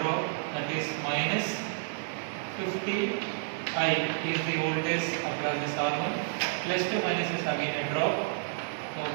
drop, that is minus 50 I is the voltage across this R1. Plus to minus is again a drop. So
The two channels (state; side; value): silent; left; digital silence